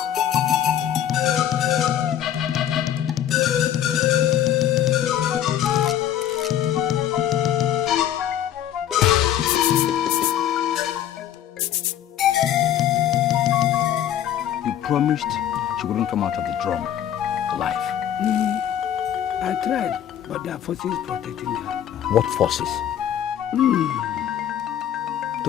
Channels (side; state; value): right; quieter; 10.6 dB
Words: You promised she wouldn't come out of the drum alive. I tried, but there are forces protecting her. What forces?